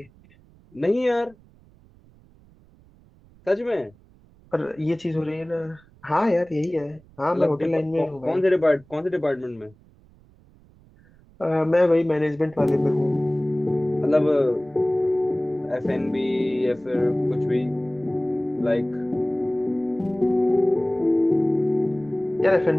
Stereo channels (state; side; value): noise; right; rumble, 28 dB below the sound